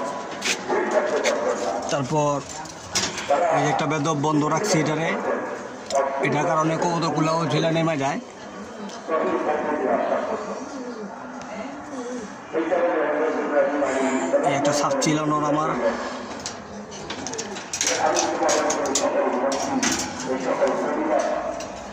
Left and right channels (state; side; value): identical; both; correlation 1.00